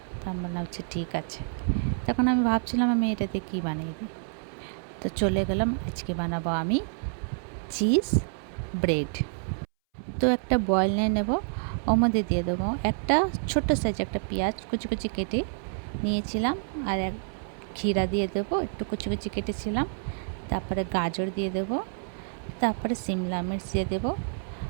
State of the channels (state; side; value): silent; left; 59 dB below the other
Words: তার মনে হচ্ছে ঠিক আছে। তখন আমি ভাবছিলাম আমি এটাতে কী বানিয়ে দিই, তো চলে গেলাম। আজকে বানাবো আমি চিজ ব্রেড। তো একটা বয়েল নিয়ে নেবো, ওর মধ্যে দিয়ে দেবো একটা ছোট্ট সাইজ একটা পেঁয়াজ কুচি কুচি কেটে নিয়েছিলাম, আর এক ক্ষীরা দিয়ে দেবো, একটু কুচি কুচি কেটেছিলাম। তারপরে গাজর দিয়ে দেবো, তারপরে সিমলা মির্চ দিয়ে দেবো,